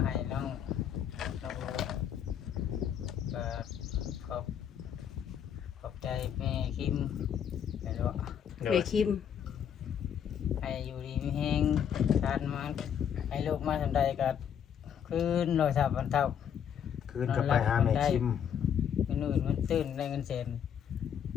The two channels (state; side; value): quieter; right; 8.6 dB